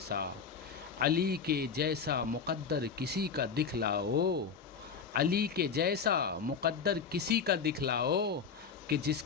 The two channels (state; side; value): quieter; right; 6.0 dB